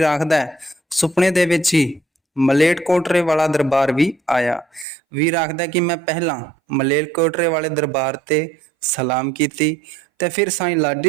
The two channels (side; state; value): left; drops out; at 4.9 s